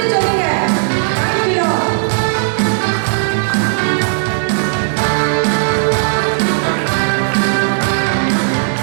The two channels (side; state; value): left; silent; digital silence